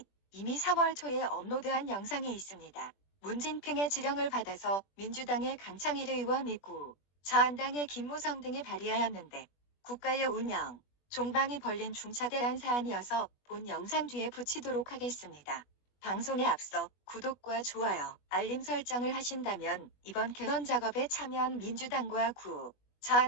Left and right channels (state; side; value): late; right; 21 ms